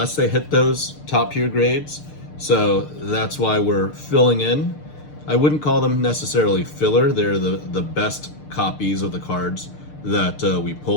they hit those top tier grades. So that's why we're filling in. I wouldn't call them necessarily filler. They're the best copies of the cards that we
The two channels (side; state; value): right; late; 6.6 ms